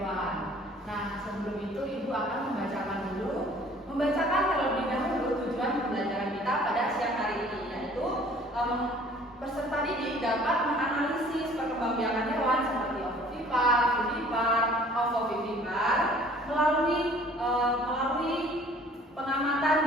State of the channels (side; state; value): both; normal; correlation 0.53